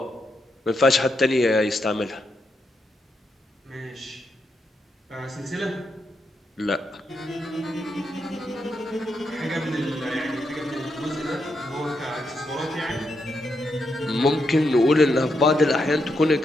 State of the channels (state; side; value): normal; both; correlation 0.82